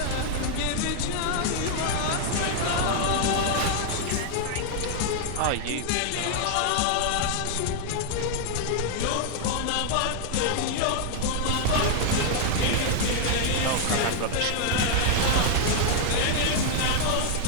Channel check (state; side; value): different; both; correlation 0.00